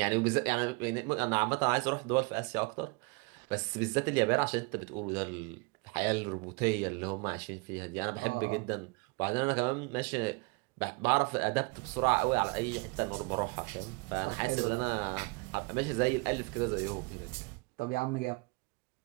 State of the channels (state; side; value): quieter; left; 29.6 dB